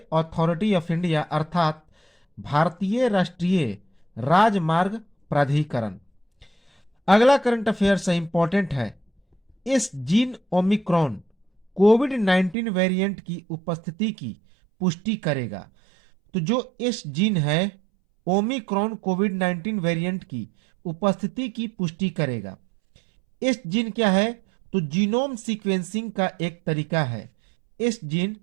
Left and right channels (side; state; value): left; drops out; at 12.6 s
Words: authority of India अर्थात भारतीय राष्ट्रीय राजमार्ग प्राधिकरण। अगला करंट अफेयर्स है, इंपॉर्टेंट है। इस जीन ओमिक्रॉन कोविड-19 वेरिएंट की उपस्थिति की पुष्टि करेगा। तो जो इस जीन है ओमिक्रॉन कोविड-19 वेरिएंट की उपस्थिति की पुष्टि करेगा। इस जीन क्या है? तो जीनोम सीक्वेंसिंग का एक तरीका है। इस